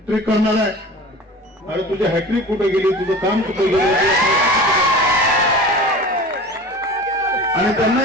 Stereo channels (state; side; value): normal; both; correlation 0.37